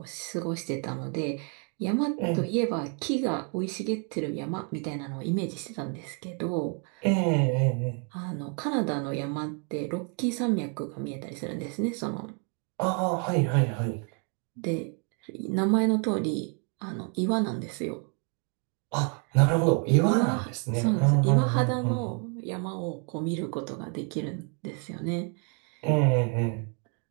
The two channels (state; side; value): quieter; left; 38.7 dB